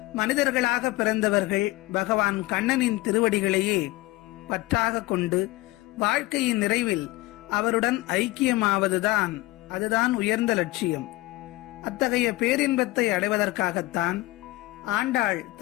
மனிதர்களாக பிறந்தவர்கள் பகவான் கண்ணனின் திருவடிகளையே பற்றாக கொண்டு வாழ்க்கையின் நிறைவில் அவருடன் ஐக்கியமாவதுதான் அதுதான் உயர்ந்த லட்சியம். அத்தகைய பேரின்பத்தை அடைவதற்காகத்தான் ஆண்டாள்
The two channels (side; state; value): right; quieter; 19.6 dB